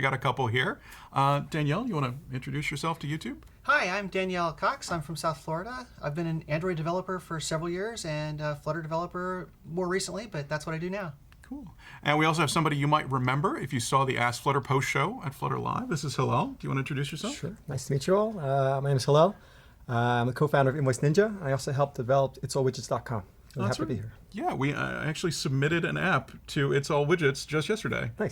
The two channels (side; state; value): both; identical; correlation 1.00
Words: got a couple here. Danielle, you want to introduce yourself to YouTube? Hi, I'm Danielle Cox. I'm from South Florida. I've been an Android developer for several years and a Flutter developer more recently, but that's what I do now. Cool. And we also have somebody you might remember if you saw the Ask Flutter post show at Flutter Live. This is Hillel. Do you want to introduce yourself? Sure. Nice to meet you all. My name is Hillel. I'm the co-founder of Invoice Ninja. I also helped develop itsallwidgets.com. I'm happy to be here. Yeah, we actually submitted an app to It's All Widgets just yesterday.